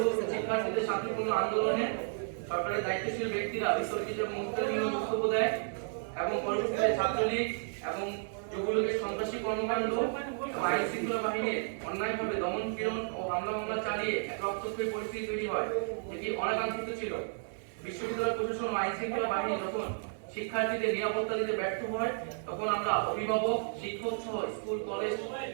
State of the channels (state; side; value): silent; left; digital silence